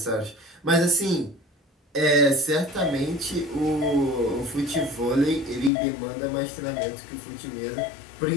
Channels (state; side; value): drops out; right; at 5.7 s